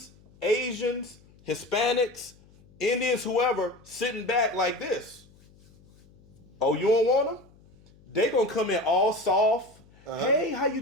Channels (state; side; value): noise; left; hum, 27 dB below the sound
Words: Asians, Hispanics, Indians, whoever, sitting back like this. Oh, you don't want them? They gonna come in all soft. Hey, how you